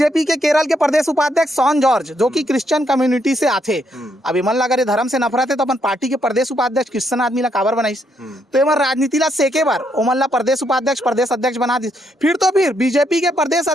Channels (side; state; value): both; normal; correlation 0.76